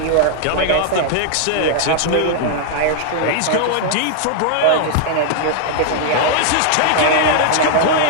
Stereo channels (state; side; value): different; both; correlation -0.01